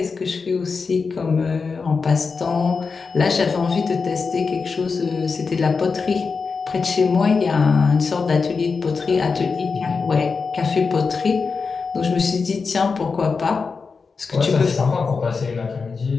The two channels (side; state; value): right; quieter; 4.8 dB